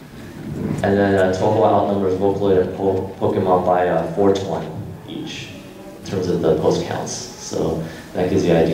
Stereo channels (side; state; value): both; identical; correlation 1.00